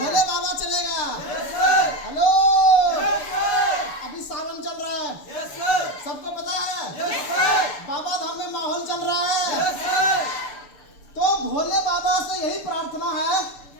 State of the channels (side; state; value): right; late; 6.9 ms